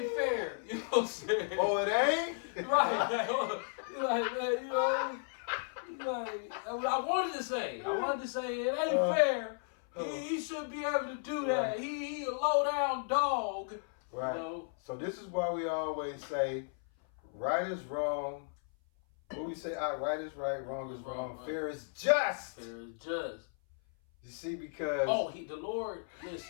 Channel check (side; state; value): right; silent; 55 dB below the other